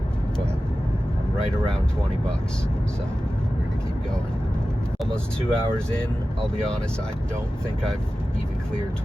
but I'm right around 20 bucks, so we're gonna keep going. Almost 2 hours in. I'll be honest, I don't think I've even cleared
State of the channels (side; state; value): both; normal; correlation 0.95